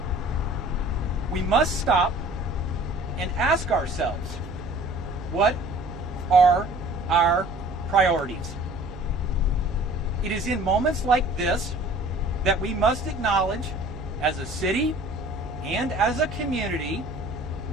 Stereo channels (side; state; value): right; noise; hum, 14 dB below the sound